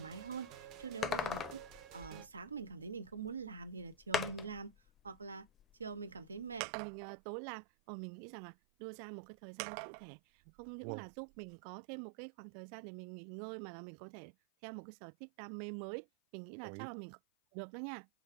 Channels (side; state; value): left; drops out; at 6.6 s